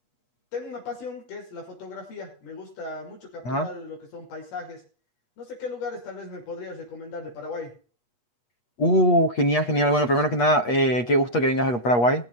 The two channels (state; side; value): late; right; 8.3 ms